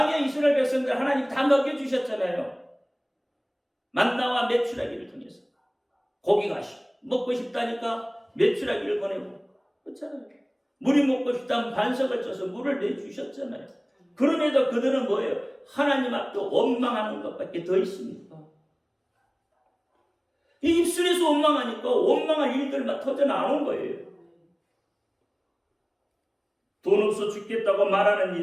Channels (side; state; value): both; identical; correlation 1.00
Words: 이스라엘 백성들 하나님 다 먹여주셨잖아요. 만나와 메추라기를 통해서 고기가 먹고 싶다니까 메추라기를 보내고 그렇잖아요. 물이 먹고 싶다면 반석을 쳐서 물을 내주셨잖아요. 그럼에도 그들은 뭐예요? 하나님 앞에 원망하는 것밖에 더 있습니까? 이 입술에서 원망하니까 원망할 일들만 터져 나오는 거예요. 돈 없어 죽겠다고 말하는